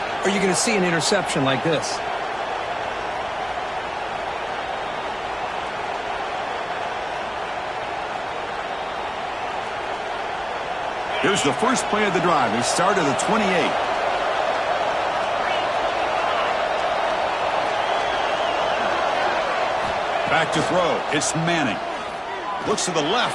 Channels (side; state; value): both; identical; correlation 1.00